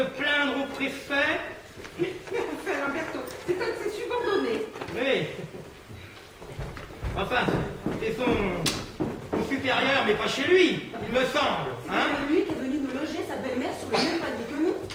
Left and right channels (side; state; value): both; identical; correlation 1.00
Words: au préfet. Enfin, Lamberto, c'est un de ses subordonnés. Oui. Enfin, c'est son supérieur, mais pas chez lui, il me semble. Hein? C'est lui qui est venu nous loger sa belle-mère sur le même palier que nous.